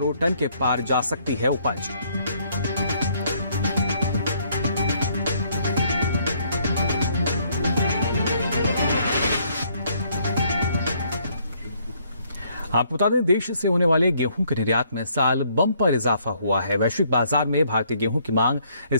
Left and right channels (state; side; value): inverted; both; correlation -0.67